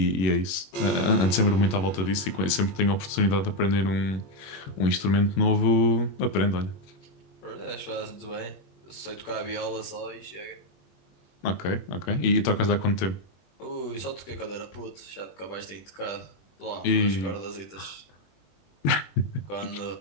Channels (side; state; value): right; late; 21 ms